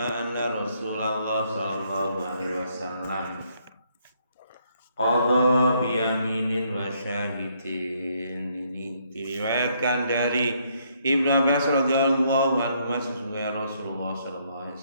Rasulullah sallallahu alaihi wasallam qadha bi yaminin wa syahidin. Ini diriwayatkan dari Ibnu Abbas radhiyallahu anhu sesungguhnya Rasulullah sallallahu alaihi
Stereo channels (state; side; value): inverted; both; correlation -0.71